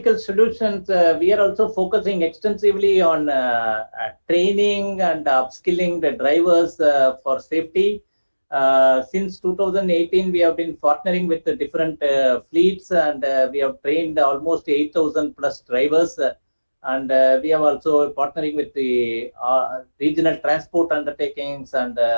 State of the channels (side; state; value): both; inverted; correlation -1.00